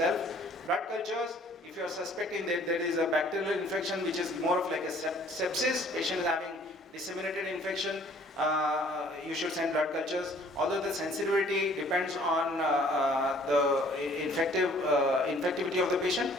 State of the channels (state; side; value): normal; both; correlation 0.57